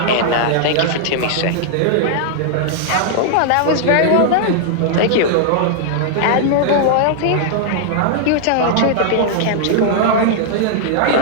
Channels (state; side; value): different; both; correlation -0.01